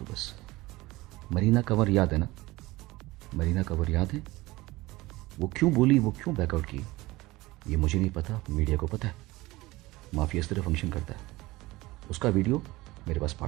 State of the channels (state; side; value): quieter; left; 20.0 dB